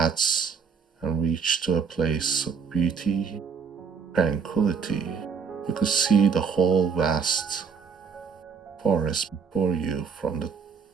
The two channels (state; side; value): quieter; left; 6.1 dB